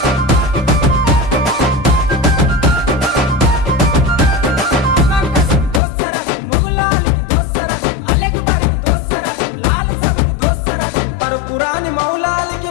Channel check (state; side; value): drops out; right; at 5.8 s